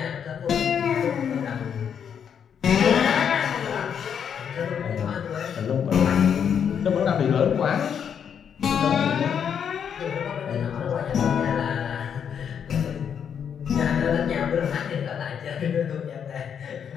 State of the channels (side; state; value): right; quieter; 7.8 dB